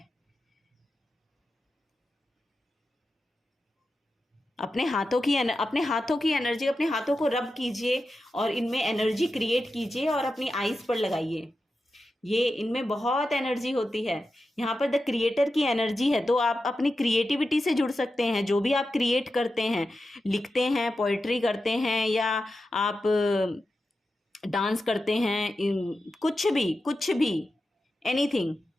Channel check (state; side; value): normal; both; correlation 0.91